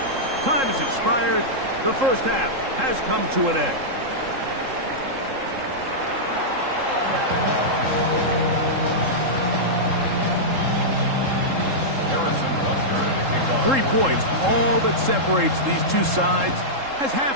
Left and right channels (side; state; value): left; late; 3.7 ms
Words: Time has expired. The first half has come to an end. Harrison Butker to kick off. 3 points, all that separates these two sides, as half